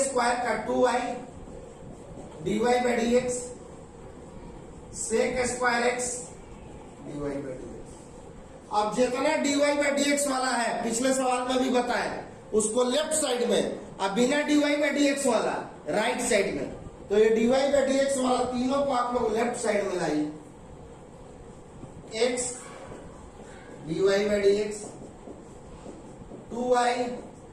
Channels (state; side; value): identical; both; correlation 1.00